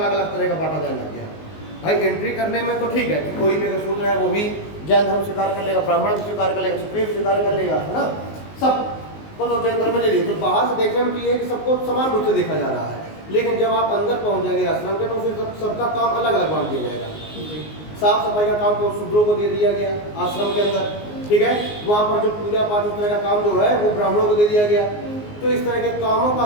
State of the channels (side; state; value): right; late; 19 ms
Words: अलग तरह का बांटा जाने लग गया। भाई एंट्री करने में तो ठीक है कि कोई भी अगर शूद्र है वो भी जैन धर्म स्वीकार कर लेगा, ब्राह्मण भी स्वीकार कर लेगा, क्षत्रिय स्वीकार कर लेगा, है ना, सब तो जैन धर्म में ले लीजिए। तो बाहर से देखने में ये है कि सबको समान रूप से देखा जा रहा है, लेकिन जब आप अंदर पहुंच जाएंगे आश्रम के तो फिर सबका काम अलग अलग बांट दिया जाएगा। साफ सफाई का काम तो शूद्रों को दे दिया गया आश्रम के अंदर। ठीक है, वहाँ पर जो पूजा पाठ उस तरह का काम जो है वो ब्राह्मणों को दे दिया गया। तो इस तरह के कामों का